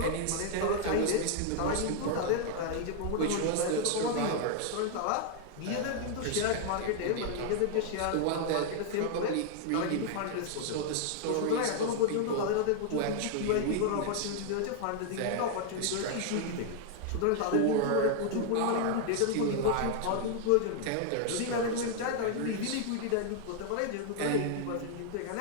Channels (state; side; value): different; both; correlation 0.00